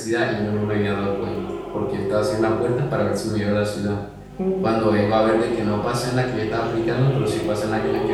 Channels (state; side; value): identical; both; correlation 1.00